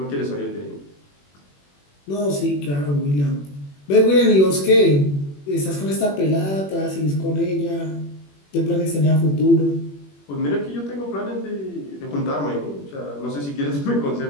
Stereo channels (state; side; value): late; right; 21 ms